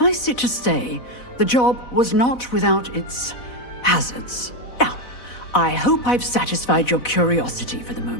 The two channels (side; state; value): right; late; 4.0 ms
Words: it to say, the job was not without its hazards. Now, I hope I've satisfied your curiosity for the